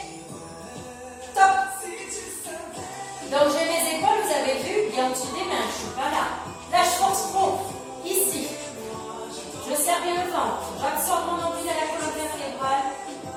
top. Donc j'ai mes épaules, vous avez vu, bien au-dessus des mains. Je suis pas là. Là, je force trop. Ici. Je serre bien le ventre. J'absorbe mon nombril à la colonne vertébrale.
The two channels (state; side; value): identical; both; correlation 1.00